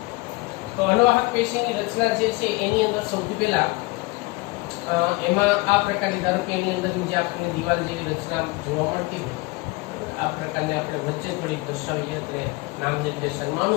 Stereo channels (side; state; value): right; quieter; 24.2 dB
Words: તો અનુવાહક પેશીની રચના જે છે એની અંદર સૌથી પહેલા એમાં આ પ્રકારની, ધારો કે એની અંદર જે આપણને દિવાલ જેવી રચના જોવા મળતી હોય, આ પ્રકારની આપણે વચ્ચે થોડીક દર્શાવીએ એટલે નામ નિર્દેશનમાં